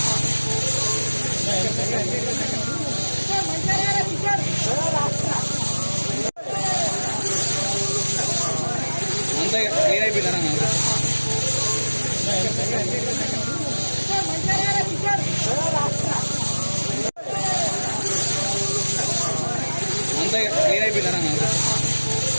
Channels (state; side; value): inverted; both; correlation -1.00